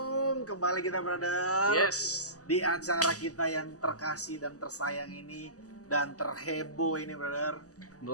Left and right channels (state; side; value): late; right; 0.66 ms